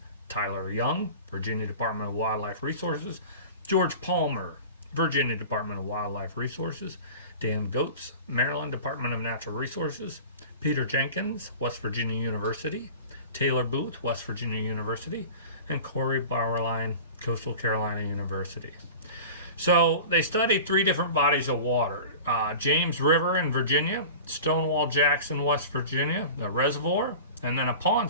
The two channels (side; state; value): both; inverted; correlation -0.36